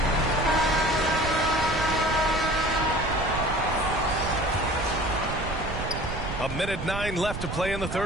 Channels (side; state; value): right; noise; rumble, 7 dB below the sound